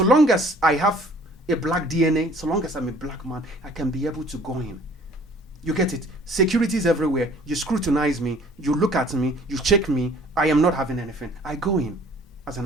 long as I have a black DNA, so long as I'm a black man, I can be able to go in. You get it? Security is everywhere. You scrutinize me, you look at me, you check me. I am not having anything. I go in as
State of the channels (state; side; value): normal; both; correlation 0.53